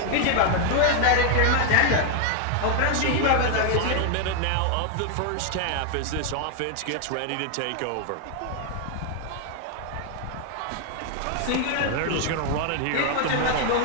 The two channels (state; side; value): different; both; correlation 0.00